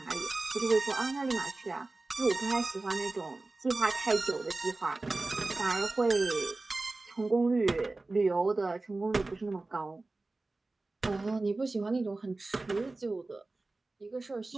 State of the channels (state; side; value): quieter; left; 3.2 dB